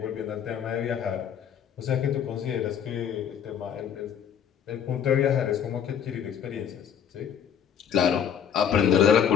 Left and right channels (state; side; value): quieter; right; 8.5 dB